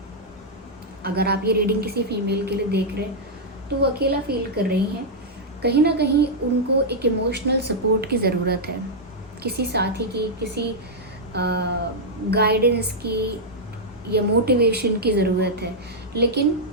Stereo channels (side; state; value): both; normal; correlation -0.06